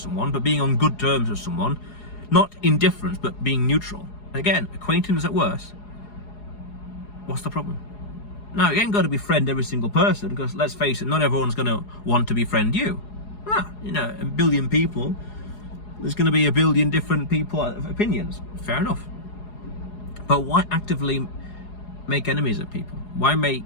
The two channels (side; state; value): right; late; 4.8 ms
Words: but being on good terms with someone, not indifference, but being neutral. Again, acquaintance at worst. What's the problem? Now, you ain't got to befriend every single person, because let's face it, not everyone's going to want to befriend you. A billion people, there's going to be a billion different people opinions. Fair enough. But why actively make enemies of people? Why